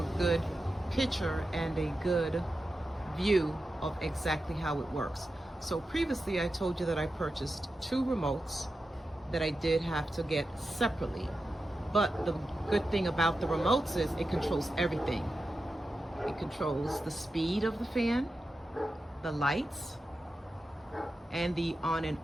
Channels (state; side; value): normal; both; correlation 0.91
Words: good picture and a good view of exactly how it works. So previously I told you that I purchased two remotes that I did have to get separately. But the good thing about the remotes is it controls everything. It controls the speed of the fan, the lights, and the on and